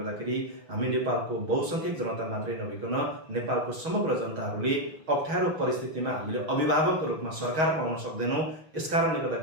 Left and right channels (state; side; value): late; left; 6.3 ms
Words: हामी नेपालको बहुसङ्ख्यक जनता मात्रै नभइकन नेपालको समग्र जनताहरूले अप्ठ्यारो परिस्थितिमा हामीले अभिभावकको रूपमा सरकार पाउन सक्दैनौँ। यसकारणले